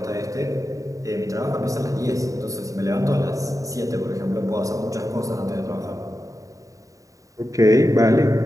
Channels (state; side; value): late; left; 0.16 ms